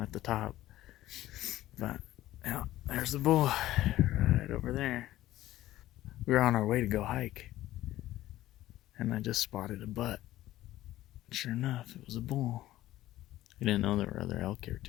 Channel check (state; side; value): quieter; right; 15.0 dB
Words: the top. But yeah, there's the bull right over there. We were on our way to go hike, and I just spotted a butt. Sure enough, it was a bull. We didn't know there were other elk here